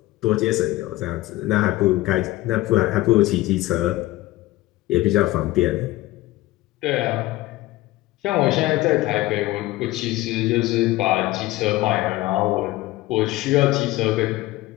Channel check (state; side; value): quieter; right; 17.7 dB